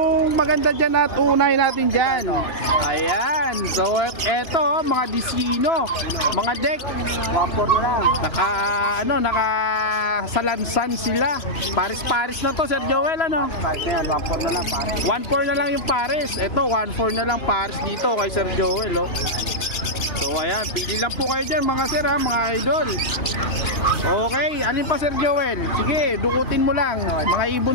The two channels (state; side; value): late; right; 2.9 ms